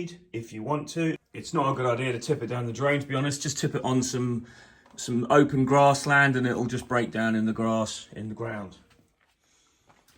if you want to. It's not a good idea to tip it down the drain, to be honest. Just tip it on some open grassland and it'll just break down in the grass in the ground.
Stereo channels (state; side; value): identical; both; correlation 1.00